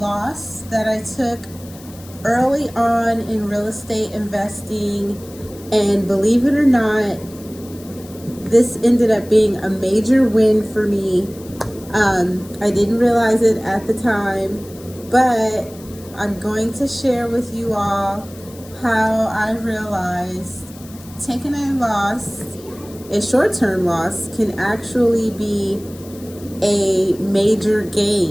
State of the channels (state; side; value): noise; left; hiss, 21 dB below the sound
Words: that I took early on in real estate investing, and believe it or not, this ended up being a major win for me. I didn't realize it at the time, but I'm going to share with you all how I realized taking a loss, a short-term loss, can actually be a major